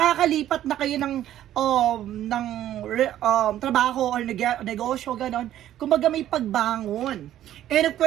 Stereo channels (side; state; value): left; quieter; 12.3 dB